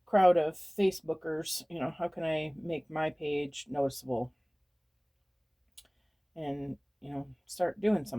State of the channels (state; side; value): identical; both; correlation 1.00